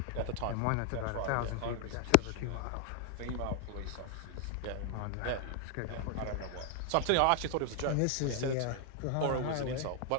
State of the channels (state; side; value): different; both; correlation 0.00